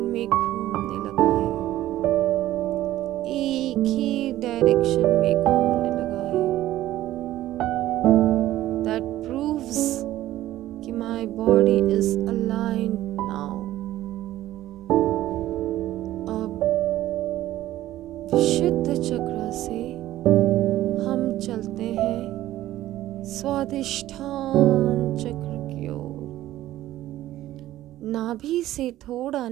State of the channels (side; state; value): left; quieter; 14.5 dB